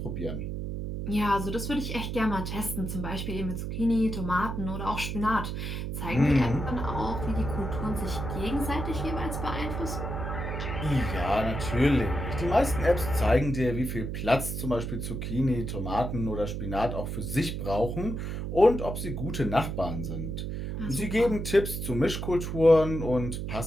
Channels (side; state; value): right; noise; hum, 4 dB below the sound